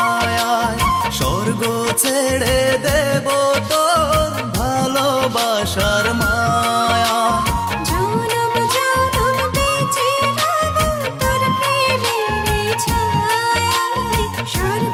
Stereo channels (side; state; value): both; identical; correlation 1.00